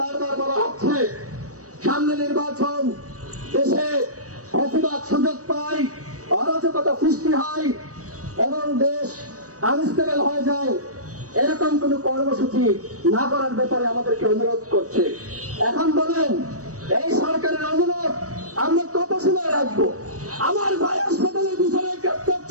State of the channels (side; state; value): left; late; 0.66 ms